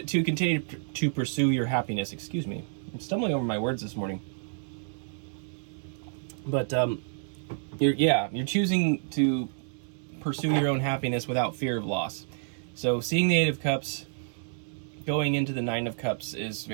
continue to pursue your happiness. Excuse me. I'm stumbling over my words this morning. But you're choosing to pursue your own happiness without fear of loss. So seeing the 8 of Cups going into the 9 of Cups is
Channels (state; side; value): silent; left; digital silence